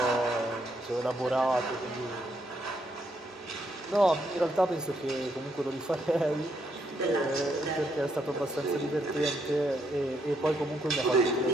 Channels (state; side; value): normal; both; correlation 0.76